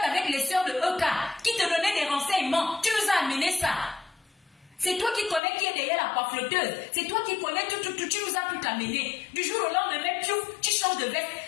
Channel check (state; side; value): drops out; right; at 5.4 s